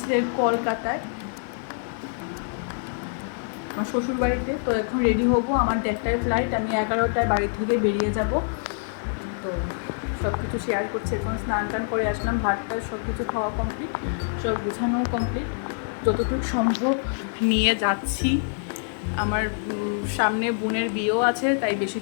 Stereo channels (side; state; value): right; silent; 56 dB below the other